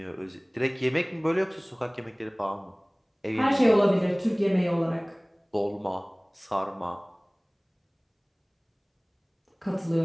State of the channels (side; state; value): both; identical; correlation 1.00